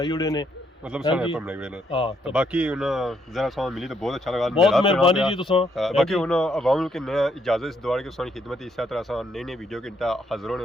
ਉੜੇ ਨੇ। ਮਤਲਬ ਸਾਰੇ ਹਾਂਜੀ। ਪਰ ਬਣਾਏ ਹੋਏ ਨੇ। ਹਾਂ ਤਾਂ ਬਾਕੀ ਉਹਨਾਂ ਜ਼ਰਾ ਸਾਂ ਮਿਲੀ ਤਾਂ ਬਹੁਤ ਅੱਛਾ ਲਗਾ। ਬਹੁਤ ਮਿਹਰਬਾਨੀ ਜੀ ਤੁਸੀਂ। बाकी उन्होंने अवाम के नया इजाज़त इस दौर की सोनी खिदमत इस तरह से नई नई वीडियो के हाजिर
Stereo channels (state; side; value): normal; both; correlation 0.73